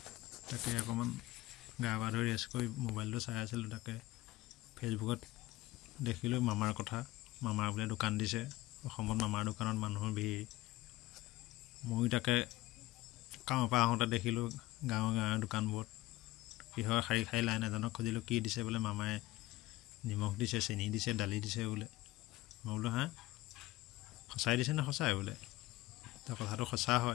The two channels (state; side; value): quieter; right; 17.9 dB